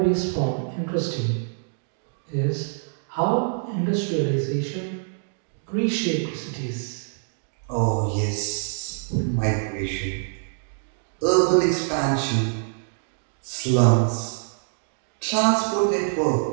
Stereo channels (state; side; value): silent; left; digital silence